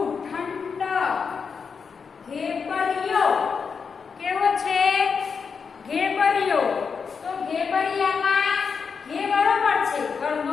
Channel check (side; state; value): right; quieter; 5.8 dB